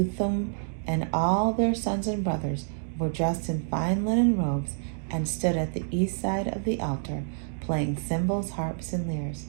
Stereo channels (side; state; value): left; silent; digital silence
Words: and all their sons and brothers, were dressed in fine linen robes and stood at the east side of the altar, playing cymbals, harps, and lyres.